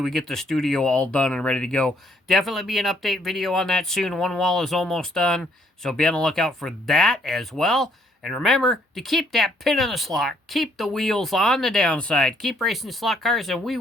we get the studio all done and ready to go. Definitely be an update video on that soon. One wall is almost done, so be on the lookout for that as well. And remember to keep that pin in the slot. Keep the wheels on the downside. Keep racing slot cars, and we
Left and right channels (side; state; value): both; normal; correlation 0.68